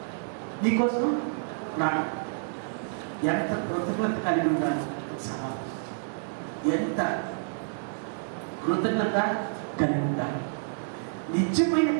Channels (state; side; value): silent; left; digital silence